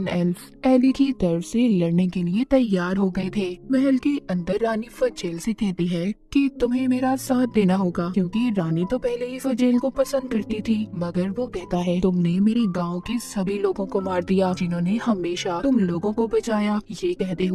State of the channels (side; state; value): both; identical; correlation 1.00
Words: एल्फ एली की तरफ से लड़ने के लिए तैयार हो गए थे। महल के अंदर रानी फजेल से कहती है कि तुम्हें मेरा साथ देना होगा, क्योंकि रानी तो पहले ही फजेल को पसंद करती थी। मगर वो कहता है तुमने मेरे गाँव के सभी लोगों को मार दिया जिन्होंने हमेशा तुम लोगों को बचाया। ये कहते